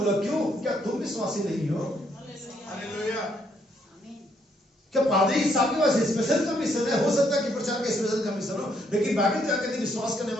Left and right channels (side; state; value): both; normal; correlation 0.72